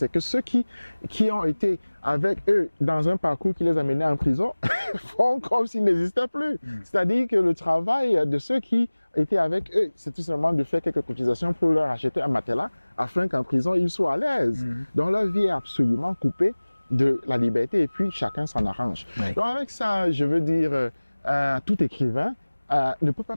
que ceux qui ont été avec eux dans un parcours qui les a menés en prison font comme s'ils n'existaient plus. C'est-à-dire que le travail de ceux qui étaient avec eux, c'est tout simplement de faire quelques cotisations pour leur acheter un matelas afin qu'en prison, ils soient à l'aise. Donc leur vie est absolument coupée de la liberté et puis chacun s'en arrange. Donc avec ça, je veux dire, tout écrivain ne peut pas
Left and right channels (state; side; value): inverted; both; correlation -1.00